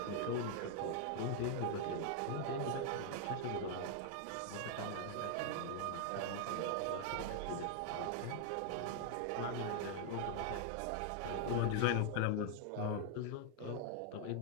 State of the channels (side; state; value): both; different; correlation 0.00